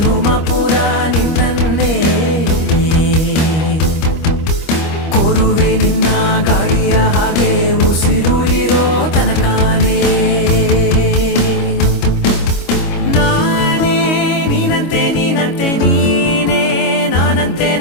ಪೂರ ನಿನ್ನನ್ನೇ, ಕೋರುವೆ ನಿನ್ನ ಗಾಳಿಯ ಹಾಗೆ ಉಸಿರು ಇರೋ ತನಕಾನೇ. ನಾನೇ ನೀನಂತೆ ನೀನಂತೆ ನೀನೇ, ನಾನಂತೆ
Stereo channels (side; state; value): right; late; 25 ms